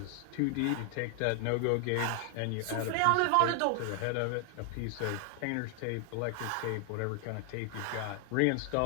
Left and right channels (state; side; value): different; both; correlation 0.00